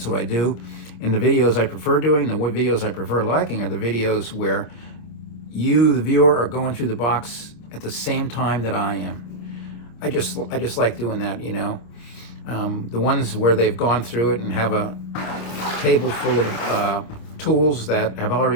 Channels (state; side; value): late; right; 26 ms